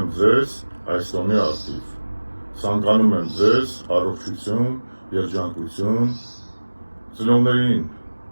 ձեզ այս տոնի առթիվ։ Ցանկանում եմ ձեզ առողջություն, երջանկություն, ծնողներին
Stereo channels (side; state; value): both; inverted; correlation -1.00